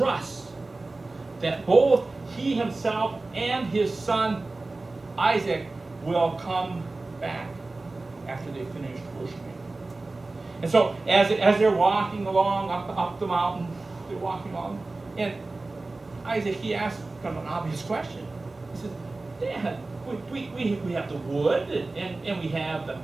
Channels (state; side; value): quieter; left; 3.3 dB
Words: that both he himself and his son Isaac will come back after they finish worshiping. And so as they're walking along up the mountain, they're walking along, and Isaac, he asks kind of an obvious question. He says, Dad, we have the wood, and we have